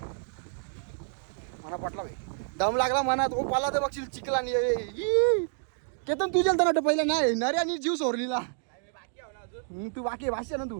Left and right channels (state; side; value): silent; left; digital silence